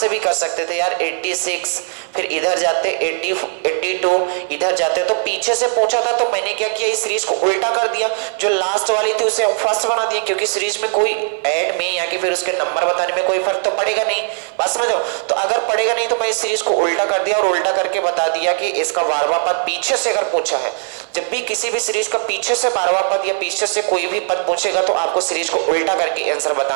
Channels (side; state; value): left; silent; 59 dB below the other